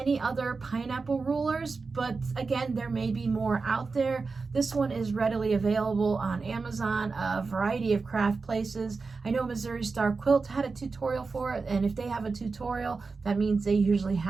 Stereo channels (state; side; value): quieter; left; 4.4 dB